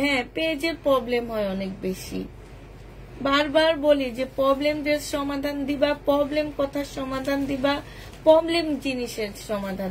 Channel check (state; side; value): identical; both; correlation 1.00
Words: পেজের প্রবলেম হয় অনেক বেশি। বারবার বলি যে প্রবলেম ড্রেস সমাধান দিবা, প্রবলেম কথার সমাধান দিবা, প্রবলেম জিনিসের সমাধান